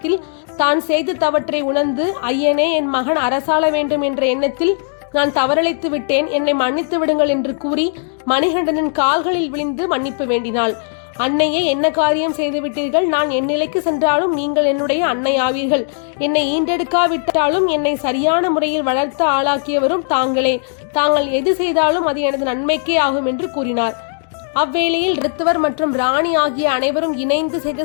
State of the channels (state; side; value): silent; right; digital silence